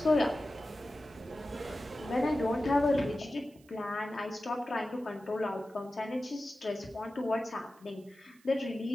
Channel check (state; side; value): noise; right; hiss, 29 dB below the sound